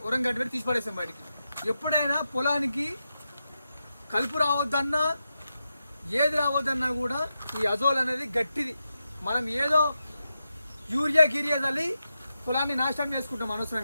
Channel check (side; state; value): both; inverted; correlation -0.88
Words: ఉరం గడ్డి పెట్టి తీసి పడేస్తాం బయటికి. ఎప్పుడైనా పొలానికి కలుపు రావద్దన్నా ఏది రావద్దన్నా కూడా ఈ అజోల్ అనేది గట్టిది. మనం ఏదో యూరియా గిరియా చల్లి పొలాన్ని నాశనం చేసుకుంటాం